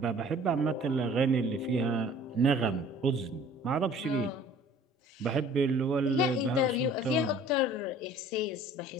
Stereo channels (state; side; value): normal; both; correlation 0.50